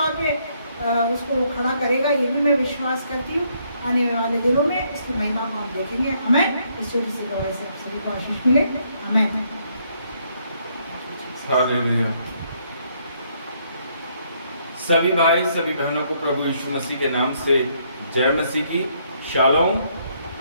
पे उसको खड़ा करेगा। ये भी मैं विश्वास करती हूँ। आने वाले दिनों में इसकी महिमा को हम देखेंगे। हमें इस छोटी सी गवाही से आप सभी को आशीष मिले। हमें हालेलुया। सभी भाई, सभी बहनों को प्रभु यीशु मसीह के नाम से जय मसीह की। शालोम।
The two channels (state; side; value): inverted; both; correlation -0.71